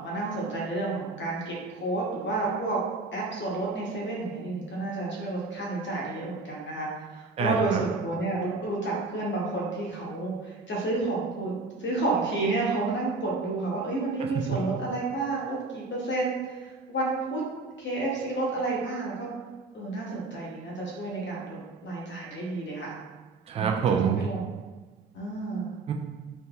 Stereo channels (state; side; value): quieter; left; 3.1 dB